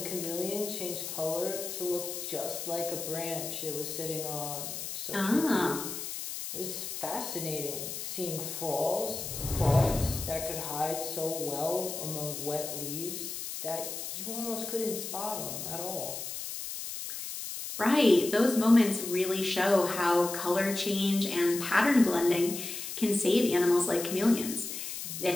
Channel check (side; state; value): left; noise; hiss, 6 dB below the sound